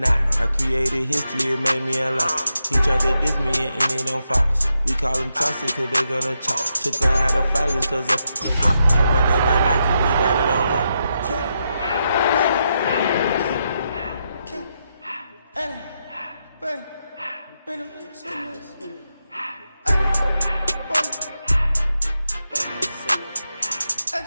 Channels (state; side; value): inverted; both; correlation -0.84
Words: I created history, it made me a lot. He tried to diss me and it don't Fox. We call them toxic cause they gonna chop. Took her out of filers cause of pop. I run it like Nike, we got it on lock.